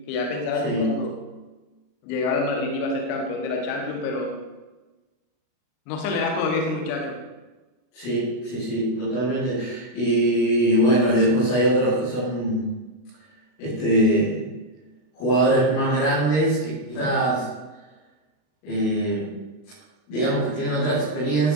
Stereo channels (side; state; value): right; late; 40 ms